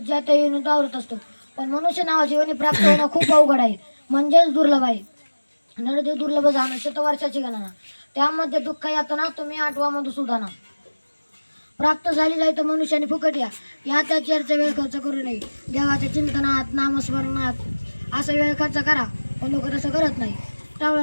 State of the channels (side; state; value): both; inverted; correlation -1.00